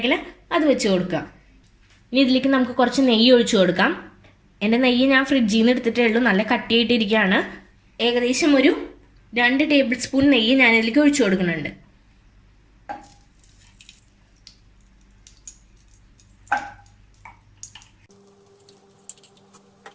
അത് വെച്ച് കൊടുക്കുക. ഇനി ഇതിലേക്ക് നമുക്ക് കുറച്ച് നെയ്യ് ഒഴിച്ചു കൊടുക്കാം. എൻ്റെ നെയ്യ് ഞാൻ ഫ്രിഡ്ജിൽ നിന്ന് എടുത്തിട്ടേ ഉള്ളൂ, നല്ല കട്ടിയായിട്ടിരിക്കുകയാണ്. ഏകദേശം ഒരു 2 ടേബിൾ സ്പൂൺ നെയ്യ് ഞാൻ ഇതിലേക്ക് ഒഴിച്ചു കൊടുക്കുന്നുണ്ട്.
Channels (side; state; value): both; identical; correlation 1.00